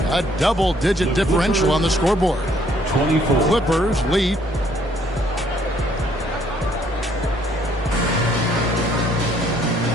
a double-digit differential on the scoreboard. 24. Clippers lead.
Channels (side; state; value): both; normal; correlation 0.65